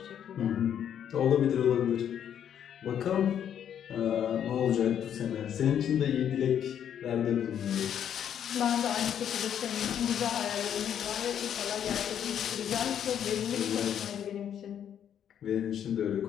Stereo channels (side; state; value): right; quieter; 9.3 dB